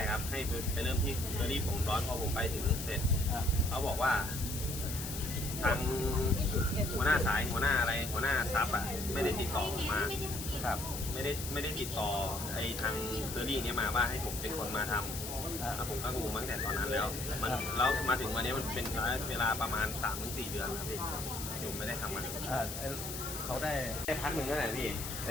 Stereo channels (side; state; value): left; noise; hiss, 7 dB below the sound